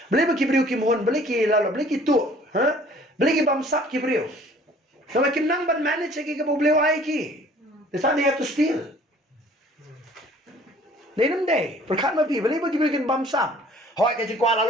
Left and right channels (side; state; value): both; normal; correlation 0.54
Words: Balik ibriyo ki mohon, balik ki lalo, balik ito. Ha? Balik bamsak ki ibriyo. So bakim nang ban manage kay ka problema ay ki. That's how they have to steal. They don't day. Perkat mapi balik ibriyo bamsak. Hoy ka jingkwala